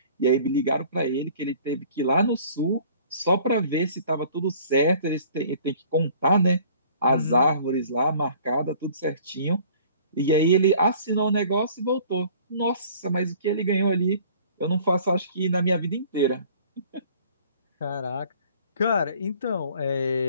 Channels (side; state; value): both; inverted; correlation -0.52